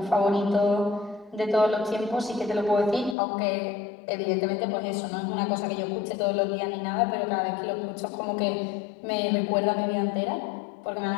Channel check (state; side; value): drops out; right; at 3.2 s